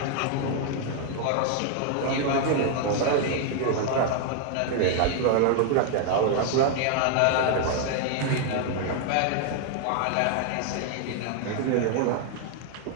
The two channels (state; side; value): different; both; correlation 0.00